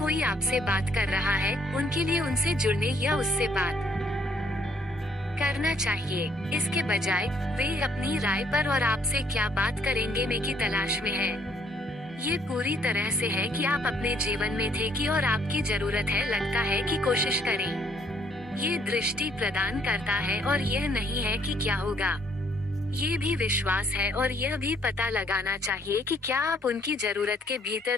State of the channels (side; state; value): both; normal; correlation 0.66